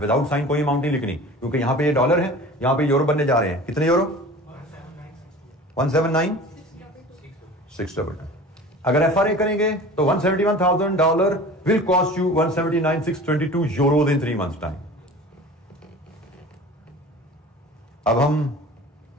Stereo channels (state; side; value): normal; both; correlation 0.40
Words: विदाउट साइन कोई अमाउंट नहीं लिखनी, क्योंकि यहां पे ये डॉलर है, यहां पे यूरो बनने जा रहे हैं। कितने यूरो? 179,622। अगर FRA करेंगे तो $171,000 will cost you 179,622 euro in 3 months time. अब हम